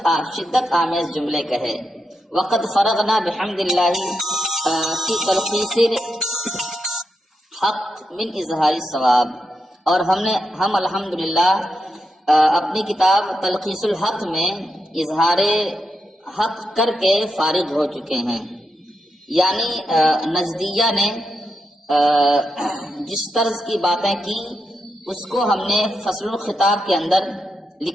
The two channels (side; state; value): both; normal; correlation 0.85